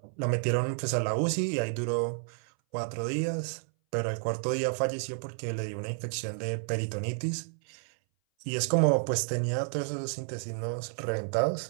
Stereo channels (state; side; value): silent; left; 57 dB below the other